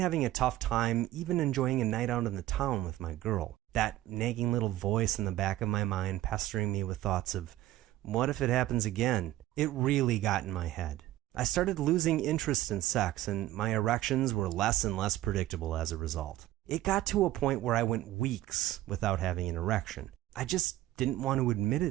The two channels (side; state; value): left; quieter; 15.3 dB